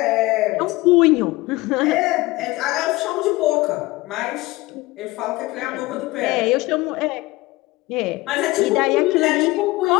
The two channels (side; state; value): right; quieter; 20.4 dB